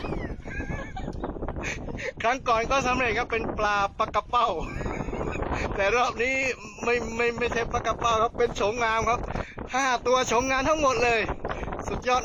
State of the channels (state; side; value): identical; both; correlation 1.00